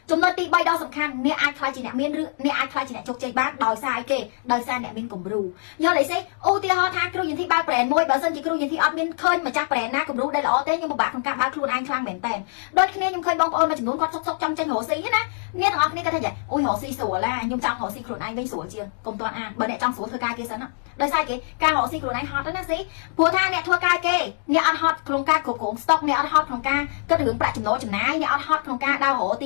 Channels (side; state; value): right; silent; digital silence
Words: ចំណុចទី3ដ៏សំខាន់អ្នកអាចខ្លាចជាអ្នកមានឬអ្នកអាចខ្លាចជាអ្នកជោគជ័យបានដោយសារអីគេដោយសារអ្នកមានគំរូយល់អីទេឧទាហរណ៍ថាគ្រូយន្តទីបើកប្រេនមួយបើសិនជាគ្រូយន្តទីអត់មានឃើញម្ចាស់ប្រេនណាគំរូដែលល្អទេខ្ញុំពិបាកក្នុងការបើកខ្លួនឯងខ្លាំងមែនតើដូចគ្នាខ្ញុំឃើញបងប្អូនមួយចំនួនគាត់សុកចង់ចេញរកស៊ីណាអ្នកទាំងអស់គ្នាគាត់ថាអូយរកស៊ីស្រួលឡាខ្ញុំចង់រកស៊ីខ្លួនឯងវិញស្រួលជាងកុំតន់អានបើអ្នកចង់ស្រួលធ្វើការគេសិនណាដោយសារគេការរកស៊ីខ្លួនឯងហត់ណាស៊ីព្រោះថាអ្នកធ្វើការគេអ្នកអត់ហត់ក្នុងការគ្រប់គ្រងស្តុកអ្នកអត់ហត់ក្នុងការគិតរឿងប្រាក់ចំណូលចំណាយអ្នកអត់ហត់ក្នុងការដើររកទ